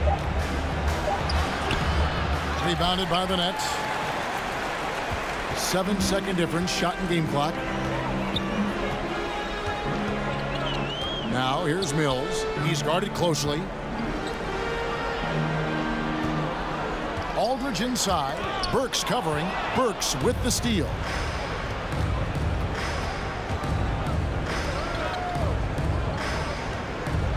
Rebounded by the Nets. 7-second difference, shot and game clock. Now here's Mills. He's guarded closely. Aldridge inside. Burks covering. Burks with the steal.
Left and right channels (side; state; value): both; identical; correlation 1.00